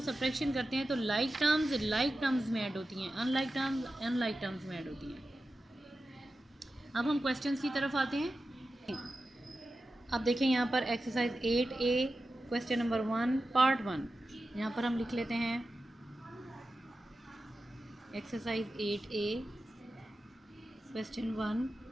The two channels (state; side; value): normal; both; correlation 0.93